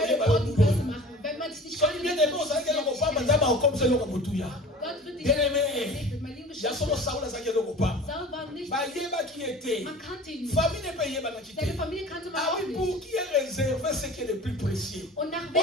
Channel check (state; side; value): normal; both; correlation 0.41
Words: yo important bulo. person machen. Wenn man dich nicht Soki bien aimé ozalaki eloko pamba nzambe akokomisa eloko motuya. Gott wird dich Bien aimé, mein lieben ya solo Saul azalaki eloko pamba. Saul war nicht, Bayebaki ye te. man kannte ihn nicht. Famille ne peut yebanaki te. Seine Familie kannte man Ah auch oui, nicht. pour qui est réservé ce qui est le plus précieux. Und nach